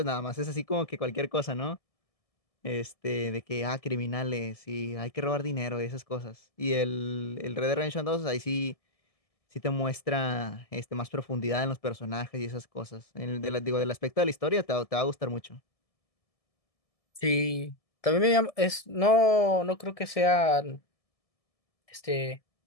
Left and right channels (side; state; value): right; late; 1.7 ms